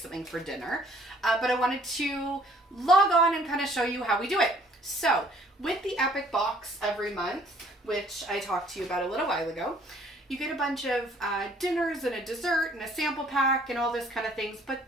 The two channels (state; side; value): normal; both; correlation 0.59